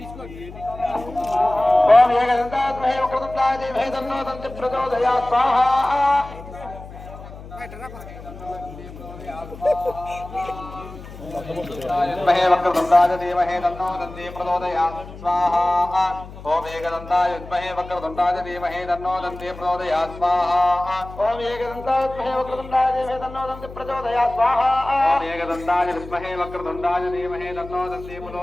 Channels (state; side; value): noise; left; hum, 15 dB below the sound